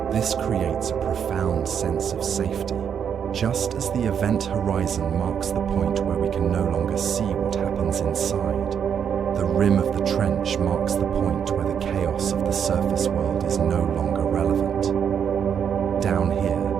This creates a profound sense of safety, just as the event horizon marks the point where we can no longer see what happens inside. The rim of the trench marks the point where the chaos of the surface world is no longer relevant. Down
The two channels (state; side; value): quieter; left; 7.9 dB